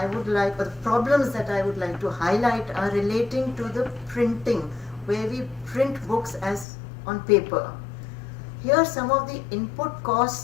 would like, or the problems that I would like to highlight are relating to the printing, where we print books as on paper. Here, some of the input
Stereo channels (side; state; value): right; drops out; at 6.7 s